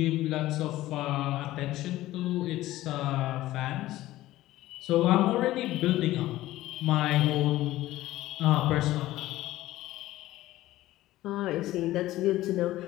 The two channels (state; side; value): quieter; right; 15.9 dB